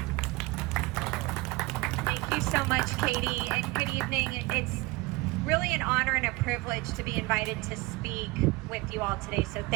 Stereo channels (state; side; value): quieter; left; 22.1 dB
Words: Thank you so much, Katie, and good evening. It's really an honor and a privilege to be invited to speak with you all today, so